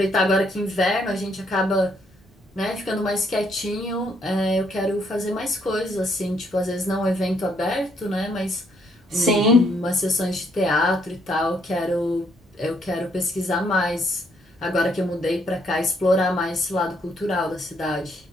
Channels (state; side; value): normal; both; correlation 0.71